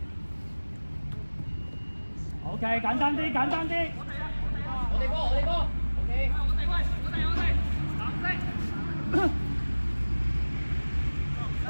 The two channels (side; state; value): both; inverted; correlation -1.00